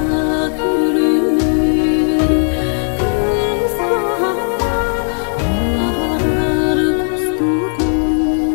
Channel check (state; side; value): silent; right; 66 dB below the other